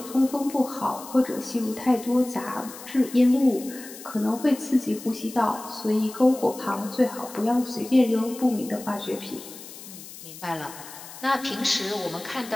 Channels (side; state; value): left; noise; hiss, 15 dB below the sound